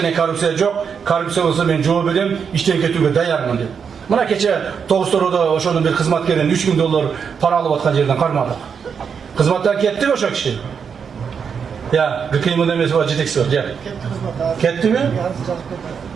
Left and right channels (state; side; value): quieter; left; 6.6 dB